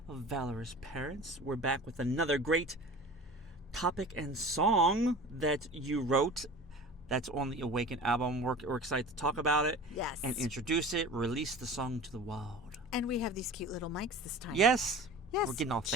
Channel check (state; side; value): normal; both; correlation 0.38